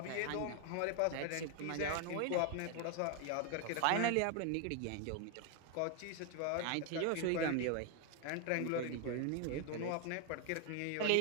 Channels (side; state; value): both; different; correlation 0.01